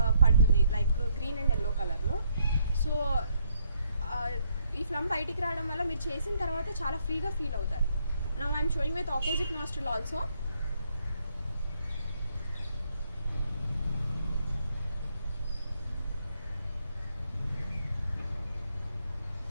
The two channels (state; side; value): inverted; both; correlation -0.71